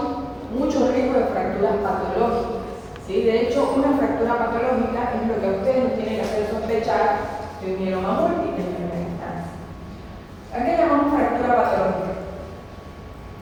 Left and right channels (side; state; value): both; identical; correlation 1.00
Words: mucho riesgo de fracturas patológicas. ¿Sí? De hecho, una fractura patológica es lo que a ustedes nos tiene que hacer sospechar de un mieloma múltiple en primera instancia. ¿A qué llamamos fractura patológica?